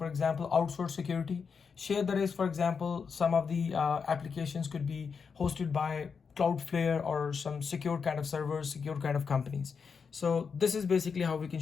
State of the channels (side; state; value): right; quieter; 5.8 dB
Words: example, outsource security. Share the risk, for example, some of the applications could be hosted by Cloudflare or some secure kind of servers, secure kind of companies. So this is basically how we can